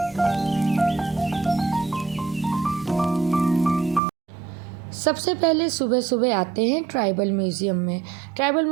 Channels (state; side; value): drops out; left; at 4.0 s